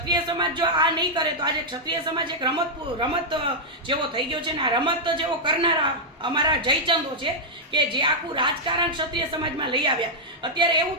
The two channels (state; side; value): normal; both; correlation -0.05